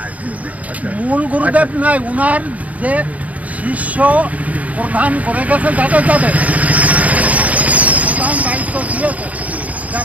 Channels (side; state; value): left; late; 0.070 ms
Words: মূল গুরুদেব নাই, উনার যে শিষ্য প্রধান করে গেছে, যাদের প্রধান দায়িত্ব দিয়েছে,